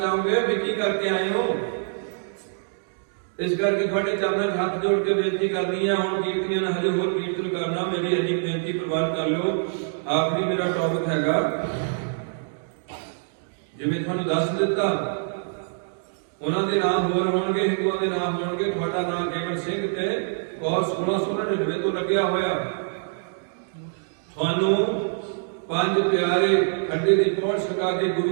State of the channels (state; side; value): silent; left; digital silence